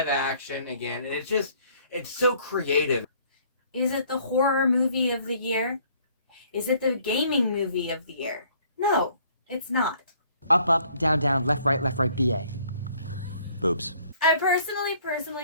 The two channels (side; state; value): both; inverted; correlation -0.60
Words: action again, and it's so creative. Is it the horror movie of the year? Is it the gaming movie of the year? No, it's not. Up, up, down, down, left, right, BA. Boobs. I personally